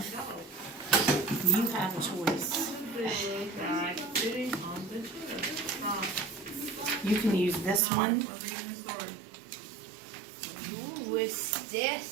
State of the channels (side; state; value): left; drops out; at 7.8 s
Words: you have a choice. You can use this one. What's